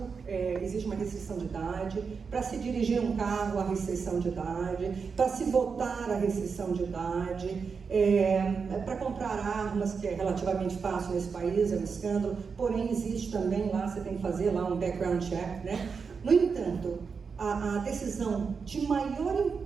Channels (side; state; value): left; quieter; 5.5 dB